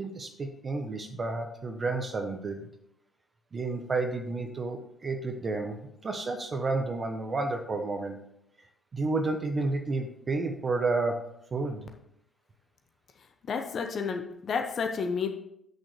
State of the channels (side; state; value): both; normal; correlation 0.75